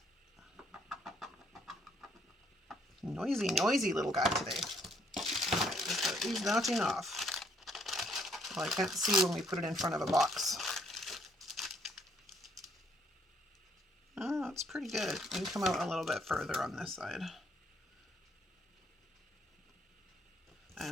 Noisy little guy today. Right, he's not enough. Well, I can't see when we put it in front of a box. Oh, it's pretty good. We can come out a little bit further on this side.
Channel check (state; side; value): normal; both; correlation 0.67